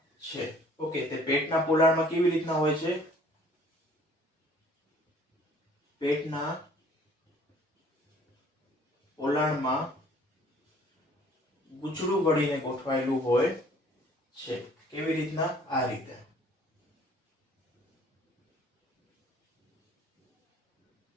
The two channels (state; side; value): normal; both; correlation 0.55